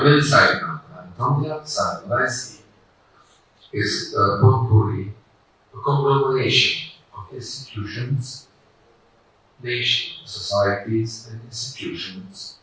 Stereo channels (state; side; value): identical; both; correlation 1.00